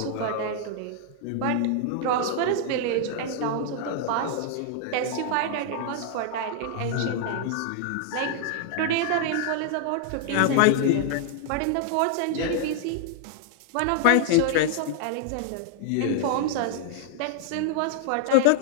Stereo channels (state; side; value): different; both; correlation 0.00